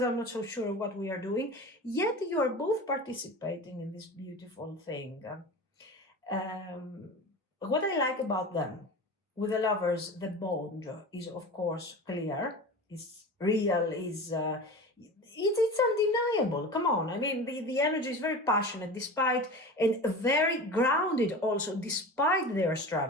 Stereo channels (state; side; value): normal; both; correlation 0.32